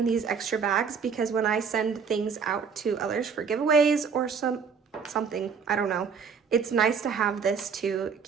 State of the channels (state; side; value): quieter; left; 6.1 dB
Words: these extra bags because when I send things out to others for giveaways or something, I don't know, it's nice to have this to